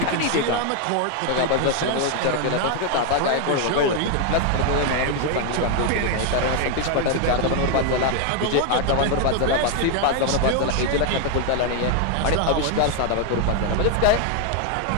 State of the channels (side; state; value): both; different; correlation 0.01